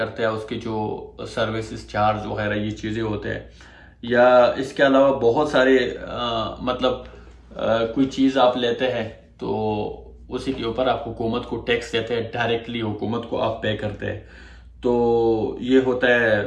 ہے، اس کے جو سروسز چارج وغیرہ یہ چیزیں ہوتے ہیں. یا اس کے علاوہ بہت سارے مطلب کوئی چیز آپ لیتے ہیں تو اسی کے اوپر آپ حکومت کو ٹیکس دیتے ہیں، ڈائریکٹلی حکومت کو آپ پے کرتے ہیں. تو یہ ہوتا ہے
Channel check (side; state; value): both; identical; correlation 1.00